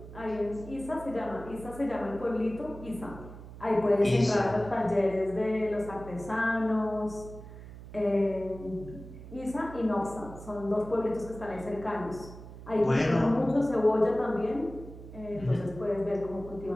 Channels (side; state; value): right; noise; hum, 14 dB below the sound